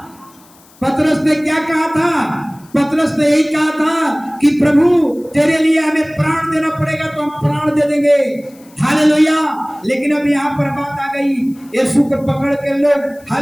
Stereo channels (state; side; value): noise; left; hiss, 28 dB below the sound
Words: पतरस ने क्या कहा था? पतरस ने यही कहा था कि प्रभु तेरे लिए हमें प्राण देना पड़ेगा तो हम प्राण दे देंगे। हालेलुया, लेकिन अब यहाँ पर बात आ गई, यीशु को पकड़ के लोग